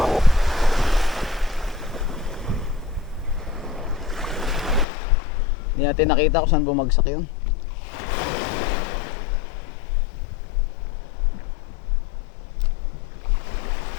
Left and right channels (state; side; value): drops out; right; at 4.9 s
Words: Hindi natin nakita kung saan bumagsak yun.